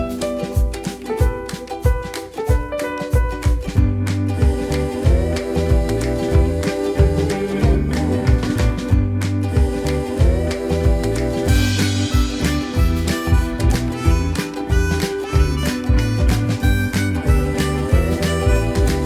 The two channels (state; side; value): identical; both; correlation 1.00